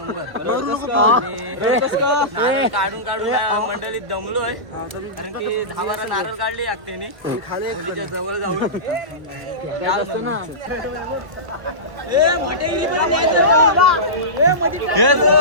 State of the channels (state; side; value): late; left; 1.1 ms